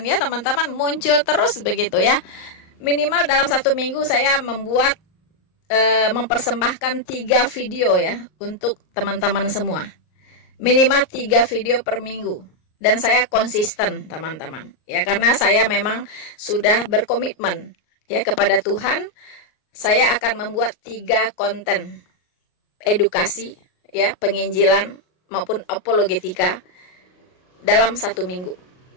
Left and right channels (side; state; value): right; late; 38 ms